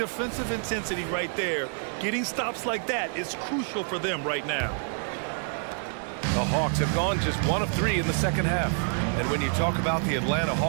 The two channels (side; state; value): left; silent; 56 dB below the other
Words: intensity right there. Getting stops like that is crucial for them right now. The Hawks have gone just 1 of 3 in the second half. And when you talk about the Atlanta